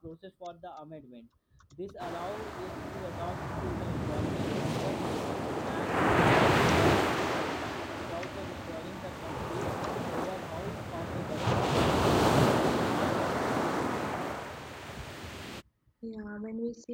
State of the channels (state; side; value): identical; both; correlation 1.00